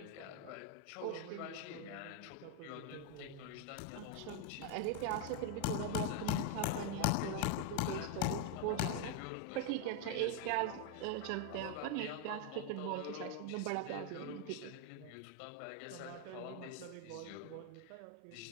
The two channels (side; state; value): both; different; correlation 0.01